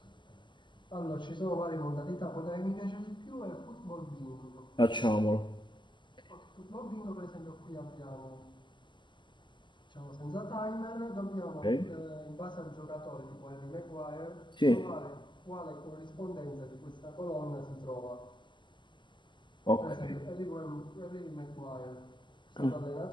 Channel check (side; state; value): right; late; 0.22 ms